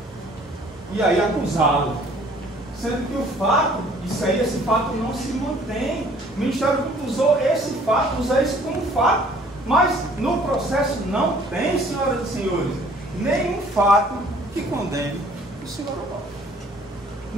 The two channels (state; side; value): normal; both; correlation 0.56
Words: e aí acusá-lo. Sendo que o fato, esse fato não se mantém. O Ministério Público usou esse fato, usa isso como fato. Mas no processo não tem, senhoras e senhores, nenhum fato que condene o senhor Onofre.